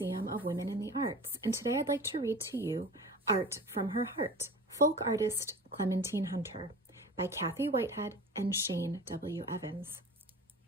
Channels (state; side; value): normal; both; correlation 0.37